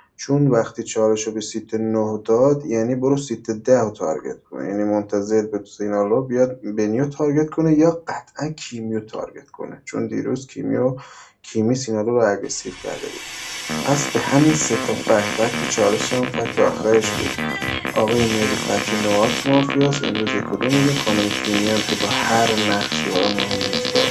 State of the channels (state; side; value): identical; both; correlation 1.00